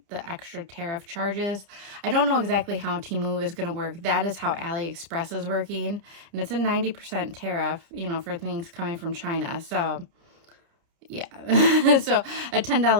extra tariff charges. I don't know exactly how Temu is going to work. That is how AliExpress is working, and it's a 90% tariff, for things coming from China. So yeah, so a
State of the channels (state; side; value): late; left; 30 ms